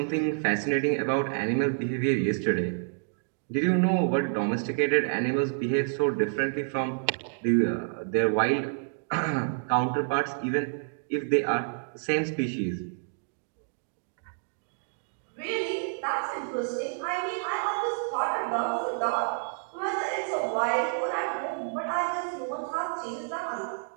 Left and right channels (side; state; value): left; silent; digital silence